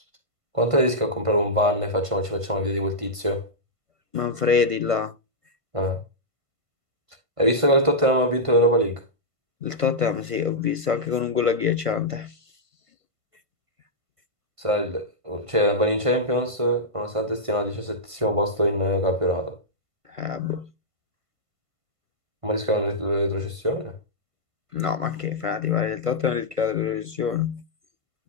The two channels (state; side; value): late; left; 1.5 ms